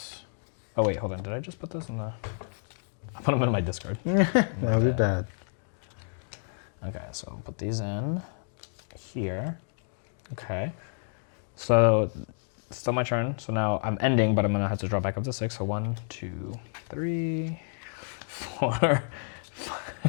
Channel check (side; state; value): right; silent; digital silence